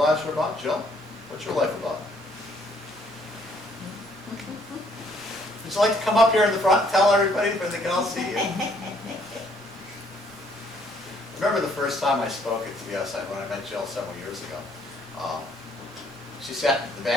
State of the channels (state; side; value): noise; right; rumble, 29 dB below the sound